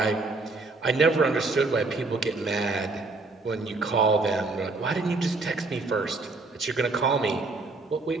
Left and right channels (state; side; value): quieter; left; 3.5 dB